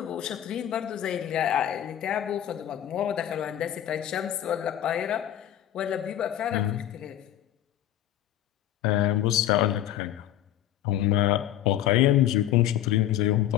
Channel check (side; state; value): right; quieter; 11.8 dB